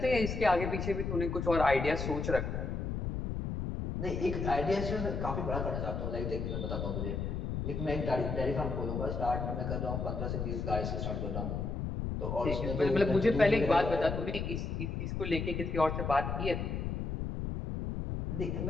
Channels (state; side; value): noise; left; rumble, 2 dB below the sound